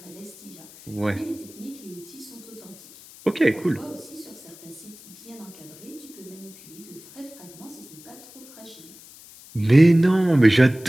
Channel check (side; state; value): left; noise; hiss, 20 dB below the sound